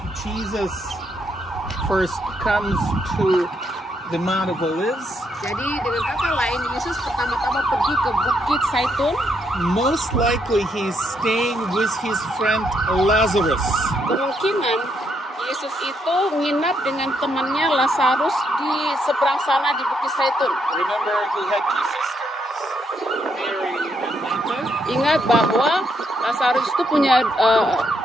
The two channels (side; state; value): both; normal; correlation 0.76